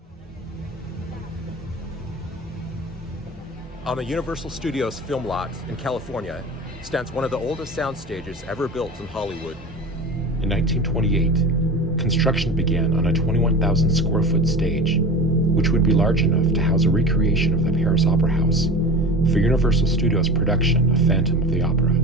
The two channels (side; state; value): both; normal; correlation 0.32